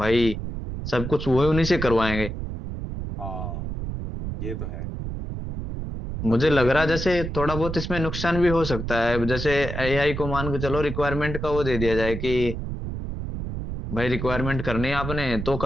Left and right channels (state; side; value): noise; right; rumble, 5 dB below the sound